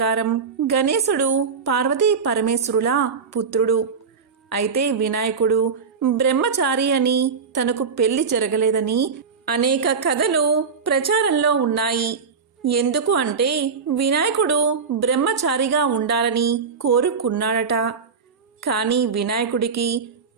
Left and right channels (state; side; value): quieter; left; 5.6 dB